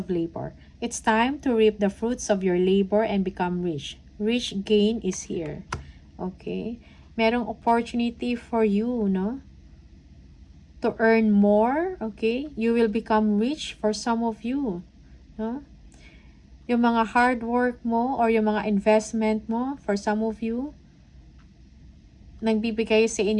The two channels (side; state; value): both; identical; correlation 1.00